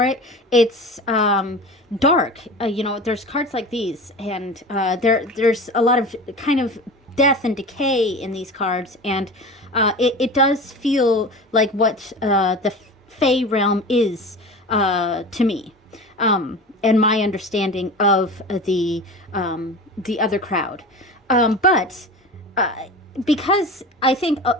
it. It's dark. There's cards like these, and there's a lot of kind of death and decay in these cards, and it does feel like what the Fae realm is to me, and my understanding of the other crowd, but. Because I think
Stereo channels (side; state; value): both; normal; correlation 0.33